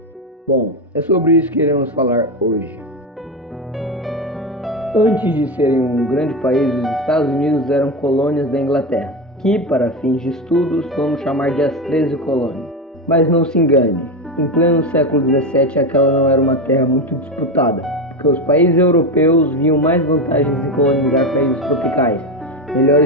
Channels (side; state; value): both; normal; correlation 0.16